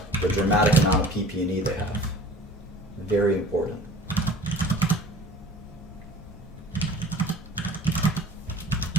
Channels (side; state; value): both; normal; correlation 0.45